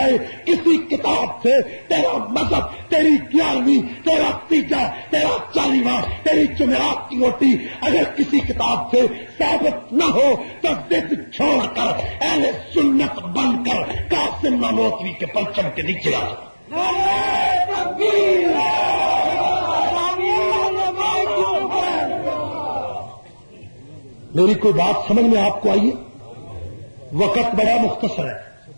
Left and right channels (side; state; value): both; inverted; correlation -1.00